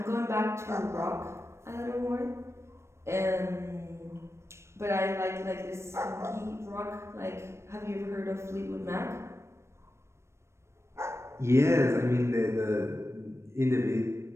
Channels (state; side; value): late; left; 0.13 ms